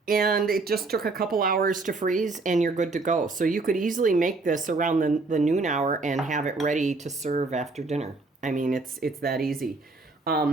And it just took a couple hours to freeze, and you're good to go. So you could easily make this around the noon hour and have it ready to serve after dinner. I mean, it's that easy.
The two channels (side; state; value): left; quieter; 3.6 dB